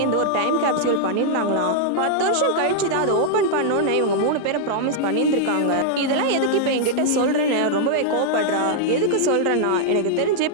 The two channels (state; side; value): different; both; correlation -0.01